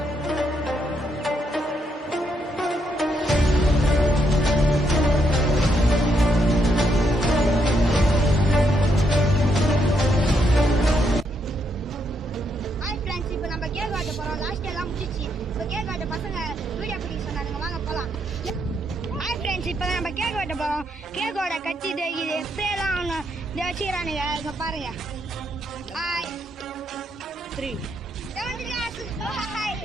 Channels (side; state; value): both; normal; correlation 0.77